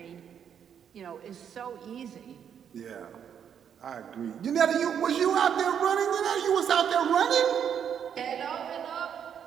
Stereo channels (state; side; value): quieter; left; 8.3 dB